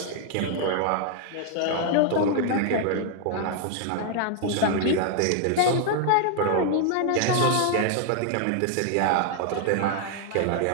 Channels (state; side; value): different; both; correlation 0.00